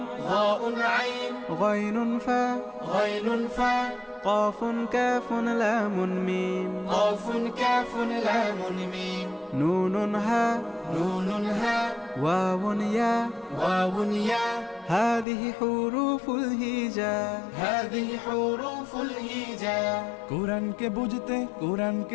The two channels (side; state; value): right; drops out; at 15.2 s